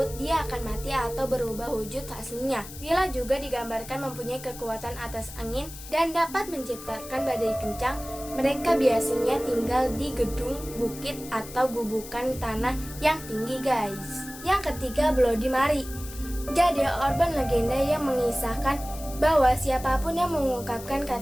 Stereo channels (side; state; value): left; noise; hiss, 14 dB below the sound